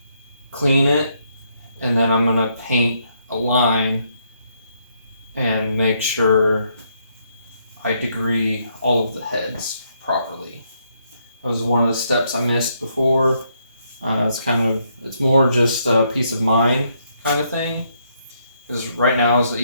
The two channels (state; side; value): inverted; both; correlation -0.74